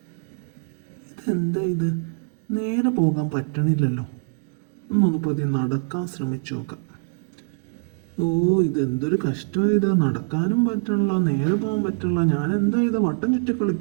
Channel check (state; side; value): silent; left; digital silence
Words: ഇതെന്താ ഇത്? നേരെ പോകാൻ പറ്റണില്ലല്ലോ. ഒന്നൊന്ന് പതിയെ നടക്കാൻ ശ്രമിച്ചു നോക്കാം. ഓ, ഇതെന്തൊരു കഷ്ടമാണ് ഇത്. നടക്കാനും പറ്റണില്ല, നേരെ പോകാൻ പറ്റണില്ല. ഞാൻ എന്താ ഇത് വട്ടം ചുറ്റി